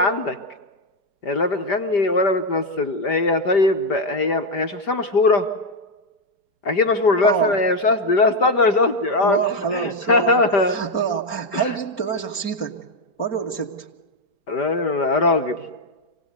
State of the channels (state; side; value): late; right; 5.0 ms